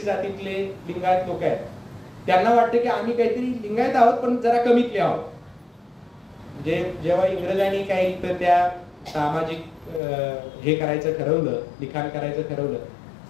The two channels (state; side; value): drops out; right; at 10.0 s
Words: जातीतले लिंगायत लोक आहेत त्यांना वाटतं की आम्ही काहीतरी लिंगायत आहोत पण जरा कमीतले आहोत. म्हणजे जेव्हा इंग्रजांनी काही तर त्या सामाजिक हे करायचं ठरवलं, लिखाण करायचं ठरवलं,